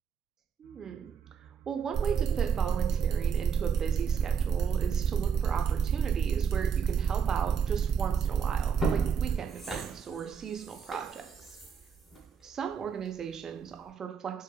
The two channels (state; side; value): quieter; left; 6.8 dB